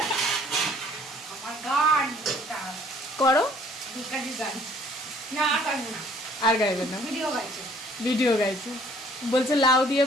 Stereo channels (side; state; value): both; normal; correlation 0.58